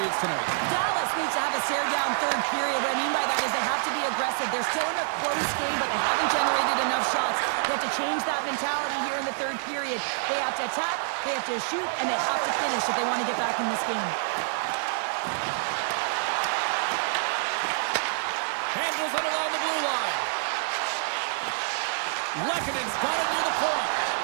tonight? Dallas needs to have a stare-down third period. What I mean by that is they have to be aggressive. They're still in a close game, but they haven't generated enough shots. They have to change that mentality here in the third period. They have to attack, they have to shoot, and they have to finish if they want to get back in this game. Handles it along the blue line. Lekkonen's got it near the point.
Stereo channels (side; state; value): left; silent; digital silence